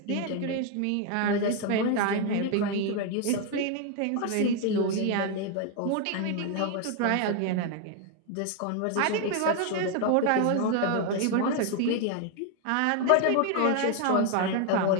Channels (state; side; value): different; both; correlation 0.01